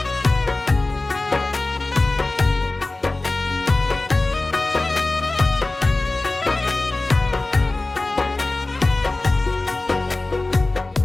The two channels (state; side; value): quieter; right; 3.0 dB